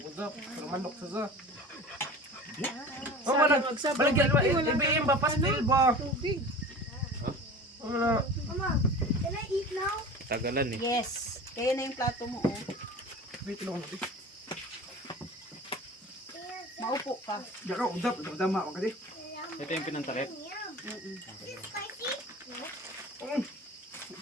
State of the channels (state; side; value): normal; both; correlation 0.37